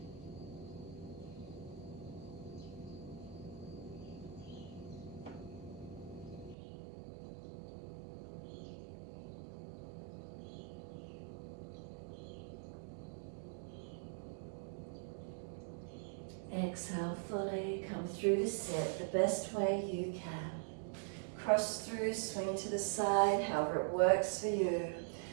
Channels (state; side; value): drops out; left; at 6.6 s